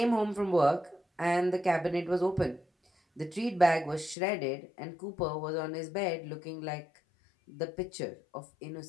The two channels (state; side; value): drops out; right; at 4.2 s